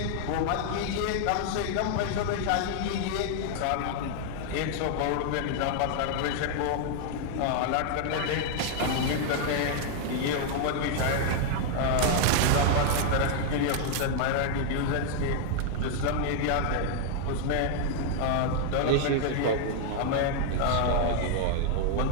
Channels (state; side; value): different; both; correlation 0.00